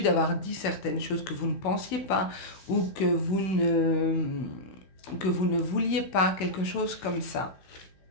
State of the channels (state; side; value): late; right; 16 ms